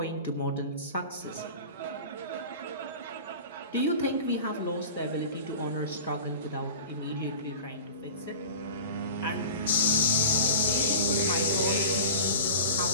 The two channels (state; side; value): inverted; both; correlation -0.36